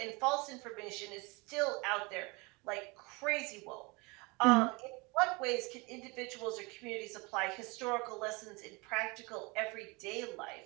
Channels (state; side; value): quieter; left; 27.1 dB